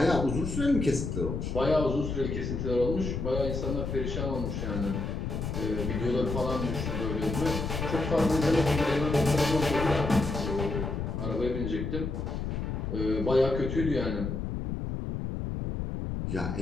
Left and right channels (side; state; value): left; noise; rumble, 3 dB below the sound